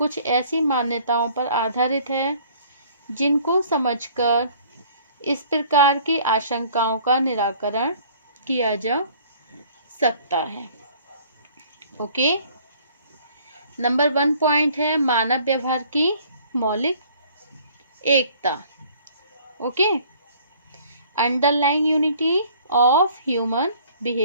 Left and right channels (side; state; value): both; inverted; correlation -0.55